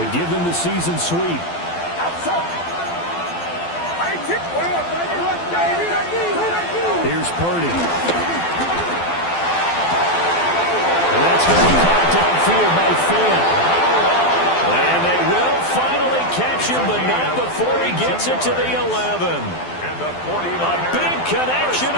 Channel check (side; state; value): right; late; 12 ms